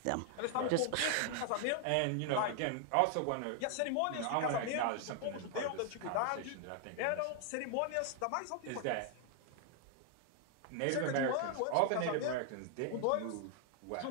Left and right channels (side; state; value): both; different; correlation 0.00